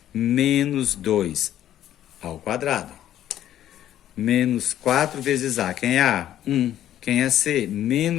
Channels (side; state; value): right; quieter; 11.8 dB